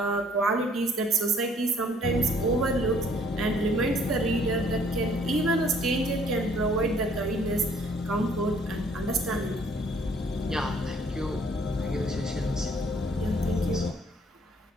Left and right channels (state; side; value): normal; both; correlation 0.61